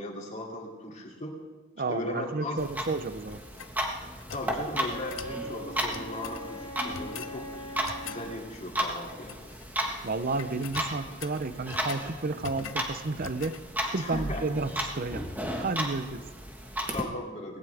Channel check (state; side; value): normal; both; correlation 0.32